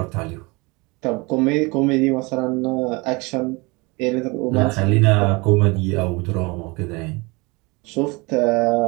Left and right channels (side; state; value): left; quieter; 26.2 dB